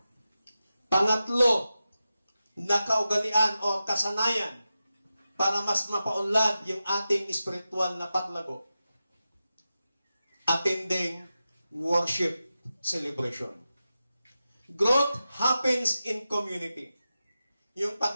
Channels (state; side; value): inverted; both; correlation -0.92